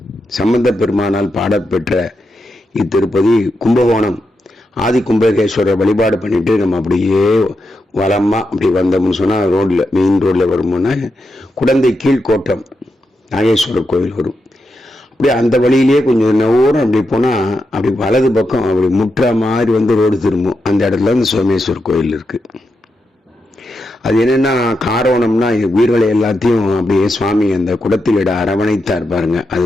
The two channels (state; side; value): normal; both; correlation 0.86